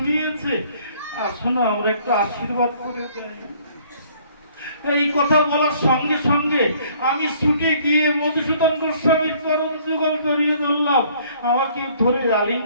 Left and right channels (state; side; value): inverted; both; correlation -0.59